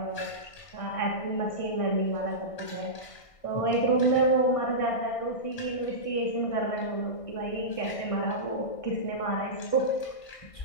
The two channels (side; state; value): right; late; 1.6 ms